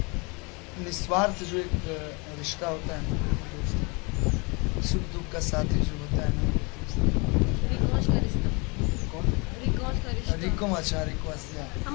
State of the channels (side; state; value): right; quieter; 29.4 dB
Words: निस्वार्थ जो एक रिश्ता होता है ना, दोस्त सुख दुख का साथी जो होता है ना, रिकॉश का रिश्ता। कौन? रिकॉश मौज का रिश्ता। रिको अच्छा रिको आसिया